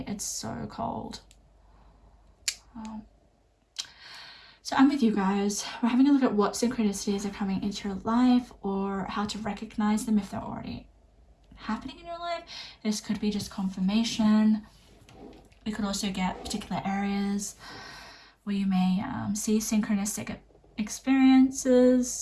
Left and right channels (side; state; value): both; identical; correlation 1.00